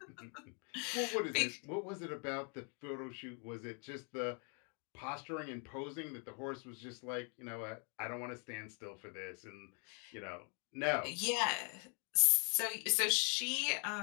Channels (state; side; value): quieter; right; 37.7 dB